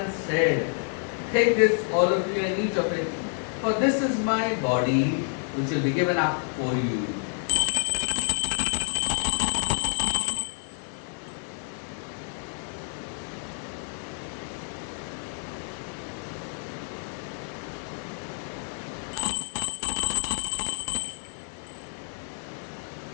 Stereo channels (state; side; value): silent; right; 56 dB below the other